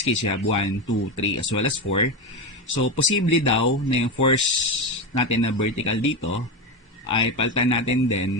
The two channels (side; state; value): both; normal; correlation 0.16